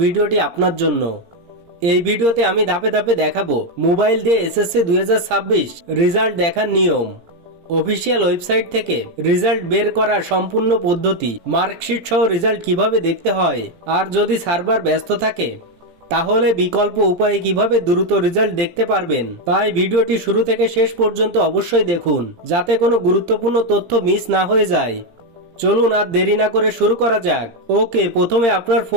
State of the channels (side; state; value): left; late; 17 ms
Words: ভিডিওটি আপনার জন্য। এই ভিডিওতে আমি ধাপে ধাপে দেখাবো মোবাইল দিয়ে এসএসসি 2026 রেজাল্ট দেখার নিয়ম, অফিসিয়াল ওয়েবসাইট থেকে রেজাল্ট বের করার সম্পূর্ণ পদ্ধতি, মার্কশিট সহ রেজাল্ট কিভাবে দেখতে হয়, আর যদি সার্ভার ব্যস্ত থাকে তাহলে বিকল্প উপায়ে কিভাবে দ্রুত রেজাল্ট দেখতে পারবেন। তাই ভিডিওটি শুরু থেকে শেষ পর্যন্ত অবশ্যই দেখুন যাতে কোনো গুরুত্বপূর্ণ তথ্য মিস না হয়ে যায়। চলুন আর দেরি না করে শুরু করা যাক। ওকে, প্রথমে আপনার